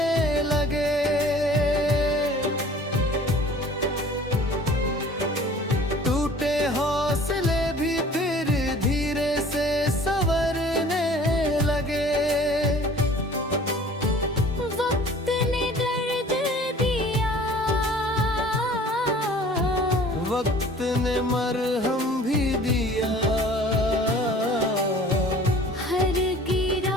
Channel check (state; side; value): normal; both; correlation 0.48